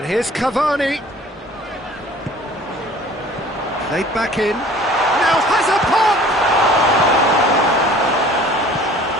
here's Cavani. Played back in. Now has a pop!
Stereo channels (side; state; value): both; normal; correlation 0.49